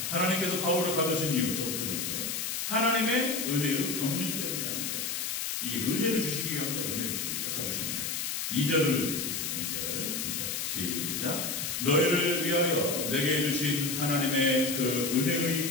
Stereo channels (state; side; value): noise; left; hiss, 2 dB below the sound